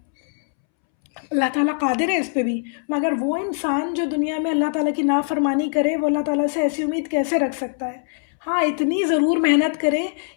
اللہ تعالیٰ قادر ہے اس پہ بھی، مگر وہ انسان جو دنیا میں اللہ تعالیٰ کی نافرمانی کرے، وہ اللہ تعالیٰ سے ایسی امید کیسے رکھ سکتا ہے؟ ہاں، اتنی ضرور محنت کرے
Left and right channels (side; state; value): right; silent; 64 dB below the other